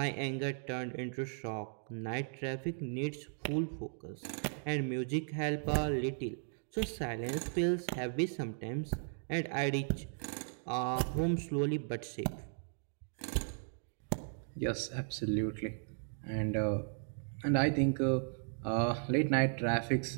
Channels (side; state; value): left; silent; digital silence